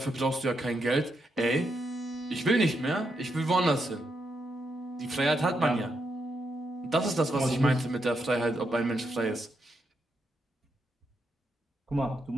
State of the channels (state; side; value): normal; both; correlation 0.82